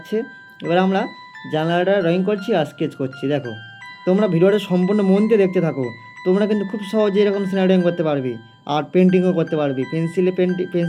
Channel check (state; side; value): identical; both; correlation 1.00